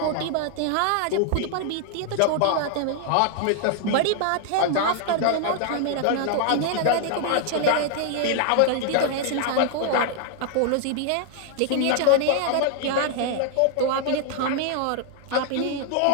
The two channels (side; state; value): both; different; correlation 0.00